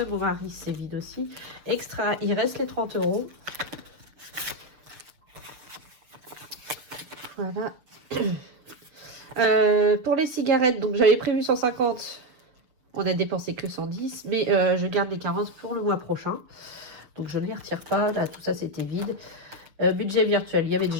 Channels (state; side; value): late; left; 6.7 ms